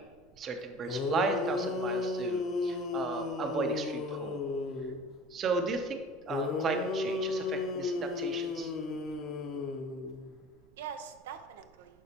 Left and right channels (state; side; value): noise; right; rumble, 28 dB below the sound